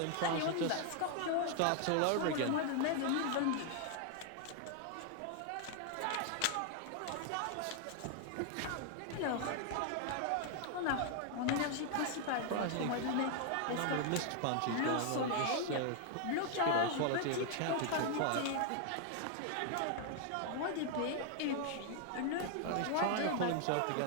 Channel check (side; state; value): both; different; correlation 0.00